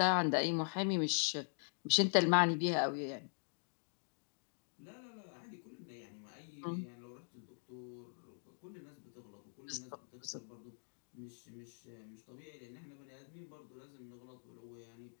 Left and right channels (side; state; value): right; silent; digital silence